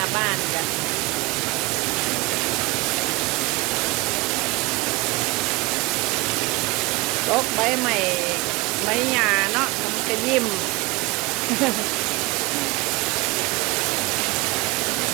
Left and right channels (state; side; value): quieter; left; 23.2 dB